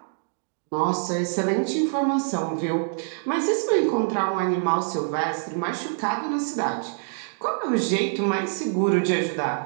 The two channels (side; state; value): left; silent; digital silence